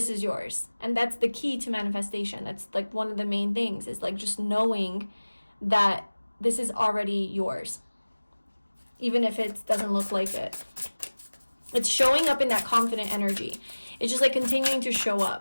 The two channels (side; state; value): both; inverted; correlation -1.00